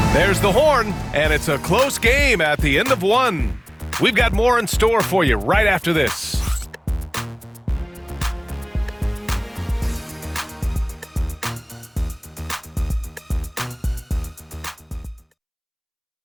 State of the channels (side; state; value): both; identical; correlation 1.00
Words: There's the horn, and it's a close game at the end of 1. We've got more in store for you right after this.